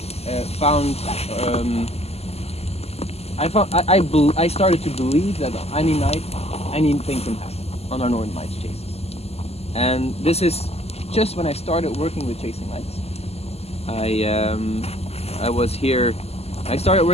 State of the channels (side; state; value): right; late; 0.30 ms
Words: found I started to believe that any night anything can happen on our Northern Lights chases. And this is just when I started working with Chasing Lights. I was here. I started